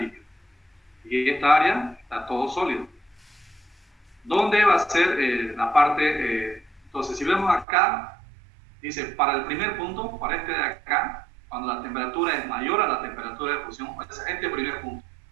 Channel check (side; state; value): left; drops out; at 7.7 s